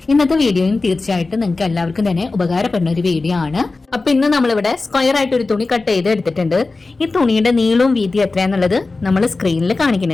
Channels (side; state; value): right; quieter; 3.6 dB